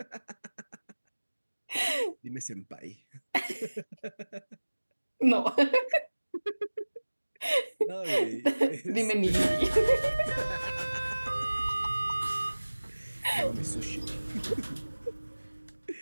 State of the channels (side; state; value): both; inverted; correlation -1.00